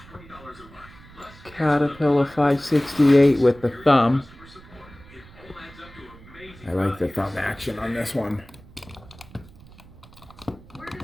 Caterpillar 568 with the thumb. I like the thumb action on this one.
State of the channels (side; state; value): right; noise; rumble, 22 dB below the sound